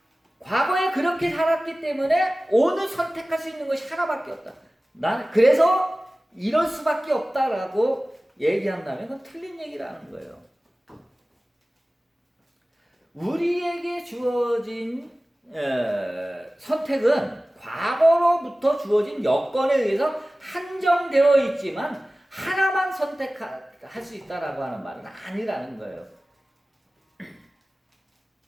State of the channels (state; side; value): normal; both; correlation 0.97